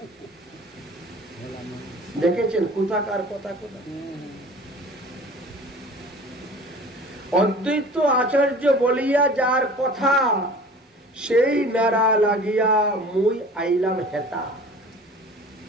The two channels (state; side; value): normal; both; correlation 0.43